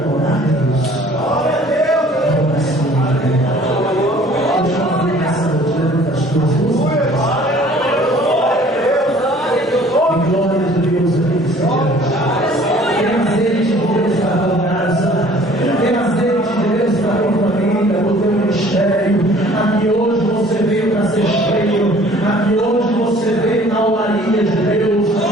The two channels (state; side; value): normal; both; correlation 0.53